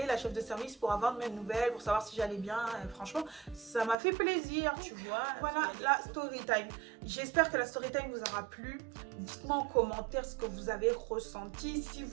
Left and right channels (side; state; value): left; drops out; at 4.0 s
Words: la chef de service, pour avoir de mes nouvelles, pour savoir si j'allais bien. Et franchement, ça m'a fait plaisir, tu vois. Voilà la story time. J'espère que la story time vous aura plu. Dites-moi en commentaire ce que vous avez ressenti. Si